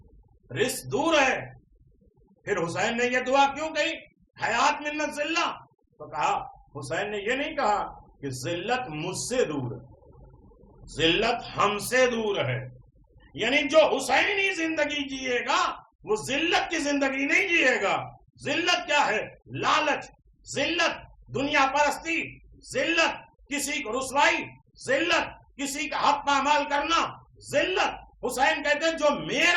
رزق دور ہے. پھر حسین نے یہ دعا کیوں کہی حیات من الذلہ؟ تو کہا حسین نے یہ نہیں کہا کہ ذلت مجھ سے دور ہے، ذلت ہم سے دور ہے. یعنی جو حسینی زندگی جیے گا وہ ذلت کی زندگی نہیں جیے گا. ذلت کیا ہے؟ لالچ، ذلت دنیا پرستی، ذلت کسی کو رسوائی، ذلت کسی کا حق پامال کرنا، ذلت. حسین کہتے ہیں جو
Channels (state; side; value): identical; both; correlation 1.00